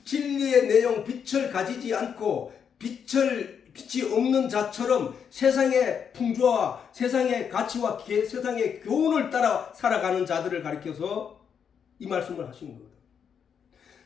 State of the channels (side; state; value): right; quieter; 7.4 dB